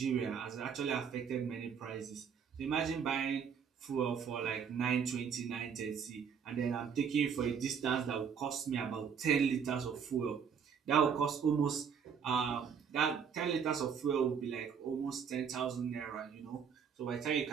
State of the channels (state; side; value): quieter; left; 7.0 dB